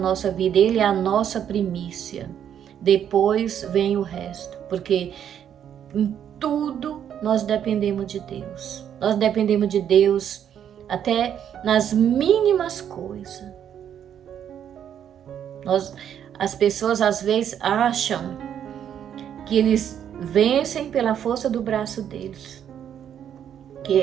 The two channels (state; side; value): quieter; left; 9.3 dB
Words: vida, Ele é a nossa primícia. Depois vem o resto, porque em tudo nós dependemos de Deus. Nós dependemos de Deus até nas mínimas coisas. As pessoas às vezes acham que eles vencem pela força do braço deles, que